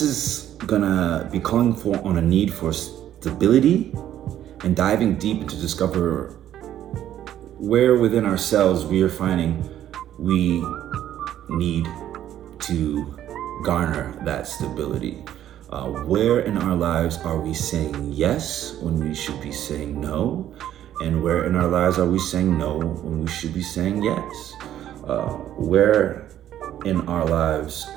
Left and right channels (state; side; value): quieter; left; 11.6 dB